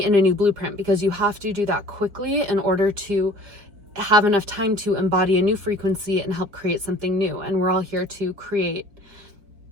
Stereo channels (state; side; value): late; left; 4.8 ms